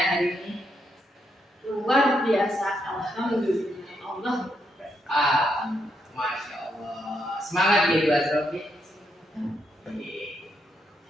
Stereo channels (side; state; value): both; normal; correlation 0.79